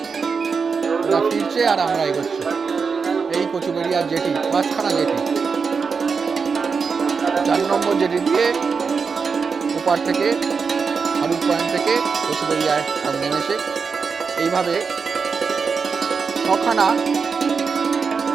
ওরা ফিরছে আর আমরা এগোচ্ছি। এই কচুবেড়িয়ার জেটি, 5খানা জেটি, 4 নম্বর জেটি দিয়ে ওপার থেকে হারুট পয়েন্ট থেকে কচুবেড়িয়ায় সব নেমেছে। এইভাবে 7খানা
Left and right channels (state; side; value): quieter; left; 5.4 dB